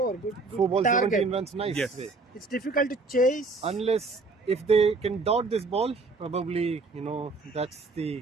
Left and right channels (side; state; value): left; quieter; 3.8 dB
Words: good 4 balls, target. 17 runs, nice. Yes. way. It's difficult to chase. Unless if they can dot this ball, probably that's